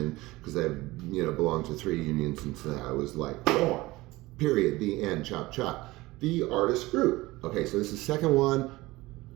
because I belonged to 3 unions since I was born. Period, the end, chop chop. The artist group. Okay, so this is second one.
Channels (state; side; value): quieter; left; 19.9 dB